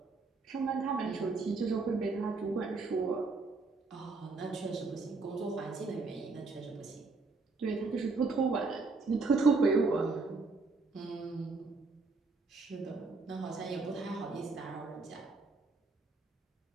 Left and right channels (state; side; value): quieter; left; 3.9 dB